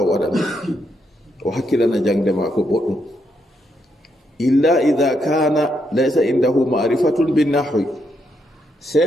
o hakkilana jangde mako boɗɗum illa idha kana laysa indahu ma'rifatun bin nahwi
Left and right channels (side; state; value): both; normal; correlation 0.79